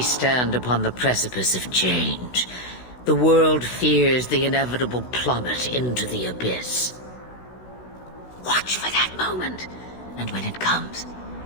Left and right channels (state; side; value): late; right; 16 ms